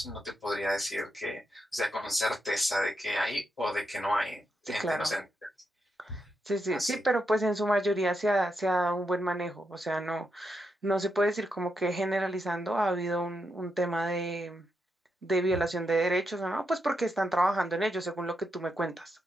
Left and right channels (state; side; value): normal; both; correlation 0.83